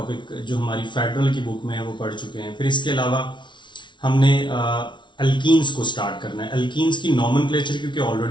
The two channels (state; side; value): late; right; 0.23 ms